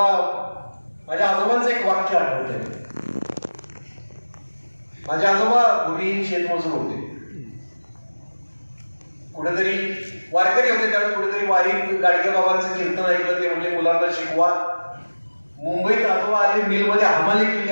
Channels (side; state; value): both; inverted; correlation -1.00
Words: माझ्या आजोबांचं एक वाक्य आठवतंय. माझे आजोबा भूमिहीन शेतमजूर होते, कुठेतरी वारकरी होते, त्यावेळी कुठेतरी वारीत गाडगे बाबांचं कीर्तन ऐकलं. ते म्हणजे मुलांना शिकवा. मुंबईत आजोबा आले, मिलमध्ये हमाली